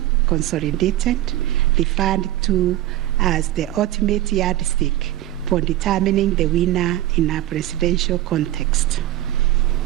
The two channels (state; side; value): quieter; left; 14.6 dB